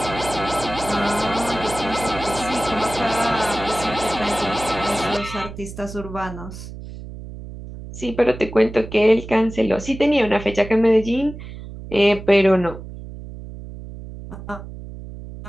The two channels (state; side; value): noise; right; hum, 12 dB below the sound